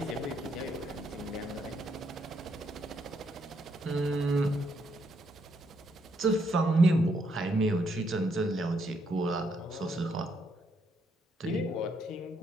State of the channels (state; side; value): normal; both; correlation 0.75